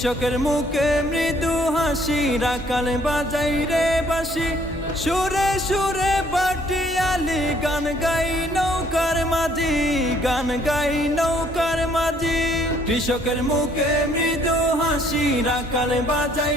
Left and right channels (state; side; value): normal; both; correlation 0.63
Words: মুখে মৃদু হাসি, রাখাল বাজাই রে বাঁশি, সুরে সুরে বাটিয়ালি গান গাই নৌকার মাঝি, গান গাই নৌকার মাঝি। কৃষকের মুখে মৃদু হাসি, রাখাল বাজাই